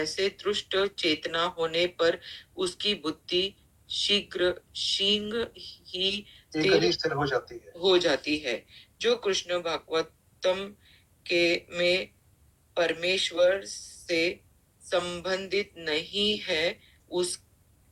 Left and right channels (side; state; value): both; identical; correlation 1.00